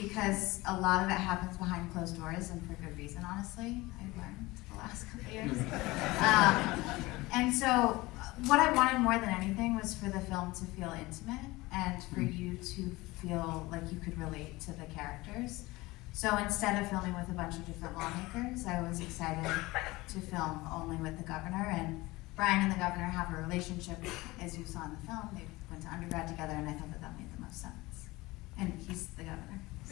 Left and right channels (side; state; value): right; quieter; 20.8 dB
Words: a lot of it happens behind closed doors and for good reason, honestly. I've learned the last couple of years. And so what I wanted more than anything was for the film to feel intimate and for you to feel like you could relate to the characters. So instead of filming with a bunch of different lawmakers, I was excited to film only with the governor. And Brian and the governor have a relationship, as you saw in the film. They went to undergrad together, and I thought that that made the most sense. And he's the governor.